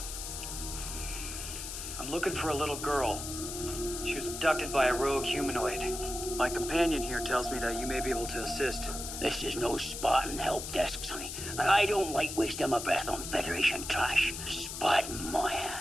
I'm looking for a little girl. She was abducted by a rogue humanoid. My companion here tells me that you may be able to assist. This is no Spartan help desk, sonny. And I don't like wasting my breath on Federation trash. Spartan my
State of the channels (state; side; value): noise; left; hiss, 7 dB below the sound